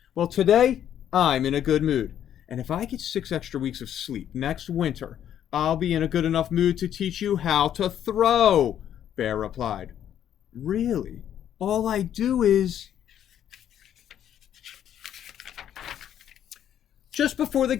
Well, today, I'm in a good mood. And if I get 6 extra weeks of sleep next winter, I'll be in a good enough mood to teach you how to throw, Bear replied. Really? All I do is... Just before the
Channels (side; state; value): right; quieter; 10.2 dB